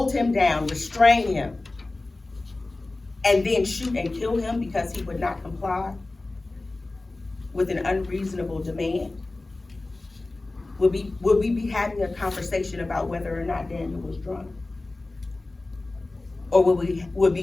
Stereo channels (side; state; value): right; quieter; 3.1 dB